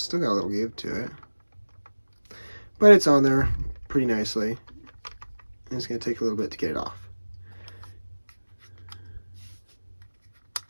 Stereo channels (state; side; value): inverted; both; correlation -1.00